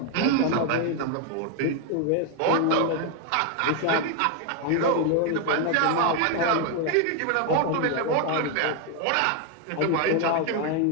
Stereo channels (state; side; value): different; both; correlation 0.01